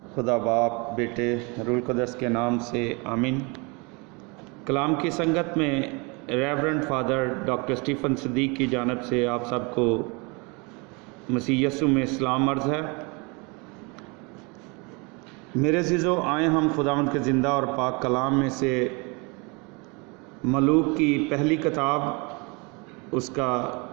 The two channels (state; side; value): quieter; left; 29.7 dB